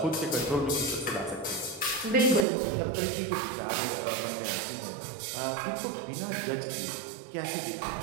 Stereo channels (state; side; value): drops out; left; at 2.5 s